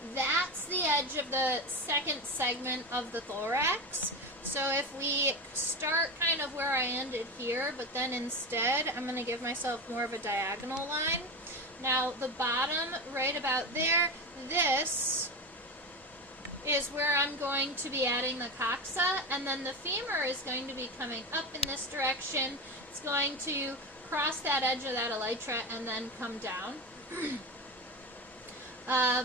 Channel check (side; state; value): both; normal; correlation 0.21